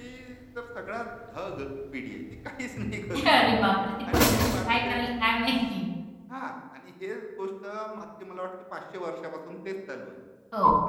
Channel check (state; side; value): identical; both; correlation 1.00